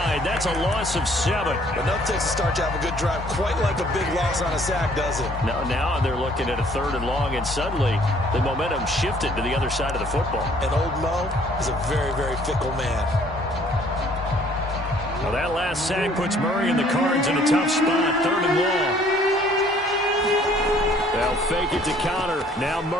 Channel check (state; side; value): normal; both; correlation 0.59